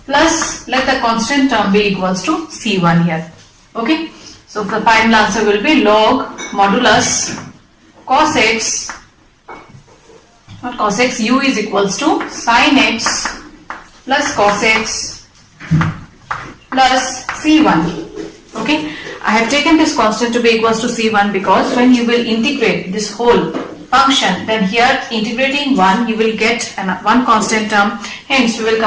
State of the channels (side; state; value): both; identical; correlation 1.00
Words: plus, let the constant term be equals to c1 here. Okay. So the final answer will be log modulus cos x, not cos x, u is equals to sin x plus cos x plus c1. Okay, I have taken this constant to be equals to c1 because when you will integrate this whole function, then here integrating 1 you will get one constant term. Hence we will